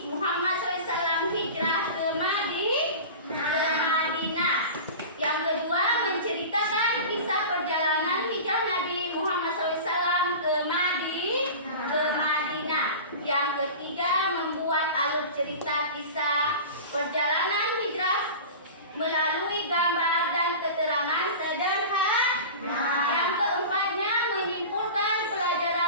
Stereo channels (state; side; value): inverted; both; correlation -0.33